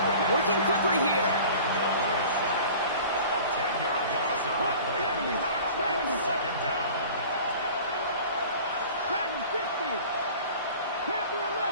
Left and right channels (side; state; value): both; inverted; correlation -0.43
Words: Working quickly here. A 10-yard loss on the play. It's 2nd down. Dragon 60. Panther